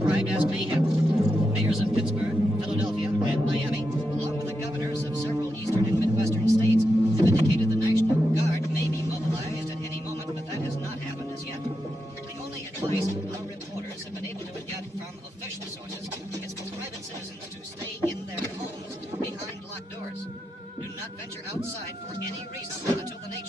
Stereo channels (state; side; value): normal; both; correlation 0.87